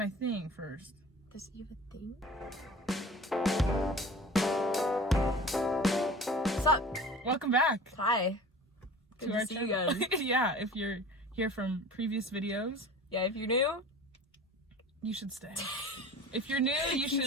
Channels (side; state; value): both; normal; correlation 0.41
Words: thing first. Does you have a thing? What's up? Welcome back. Hi. Good to see you channel. again. Yeah, if you're here from previous videos, Yeah, if you're new, you should stay. If you're new, you should